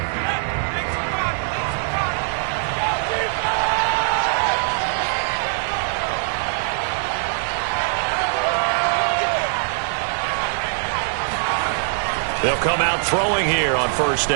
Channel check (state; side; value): silent; left; digital silence